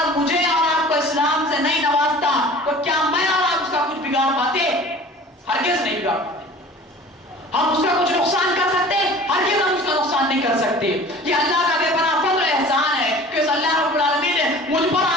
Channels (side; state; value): both; normal; correlation 0.44